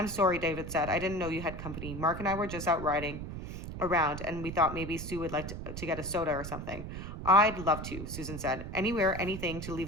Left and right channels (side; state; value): right; noise; rumble, 8 dB below the sound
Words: sorry, David said. I didn't know you had company. Mark and I were just out riding around, and we thought maybe Sue would like to get a soda or something. I'd love to, Susan said. Anywhere, anything to